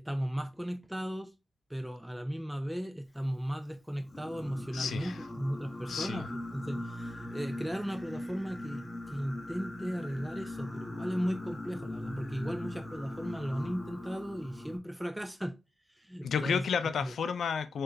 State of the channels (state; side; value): normal; both; correlation 0.93